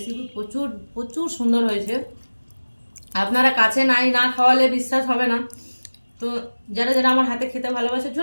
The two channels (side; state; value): both; inverted; correlation -1.00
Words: প্রচুর প্রচুর সুন্দর হয়েছে। আপনারা কাছে না খাওয়ালে বিশ্বাস হবে না। তো যারা যারা আমার হাতে খেতে ভালোবাসে